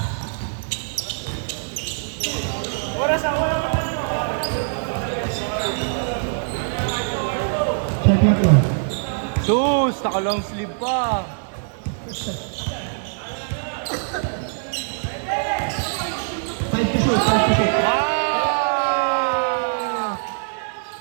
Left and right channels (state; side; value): silent; left; 64 dB below the other